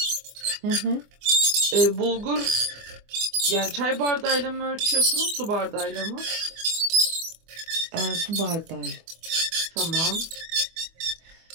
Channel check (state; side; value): late; left; 24 ms